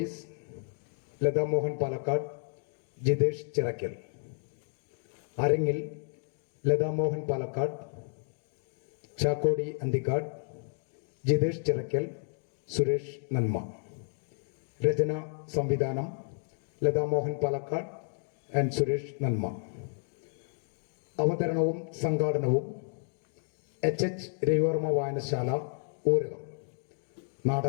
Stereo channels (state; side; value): silent; right; digital silence